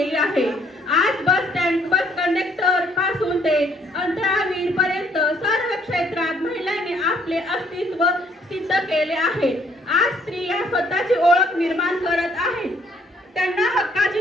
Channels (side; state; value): both; normal; correlation 0.65